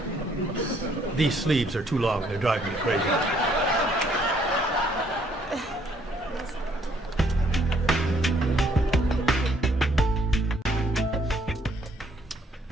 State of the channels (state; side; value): normal; both; correlation 0.66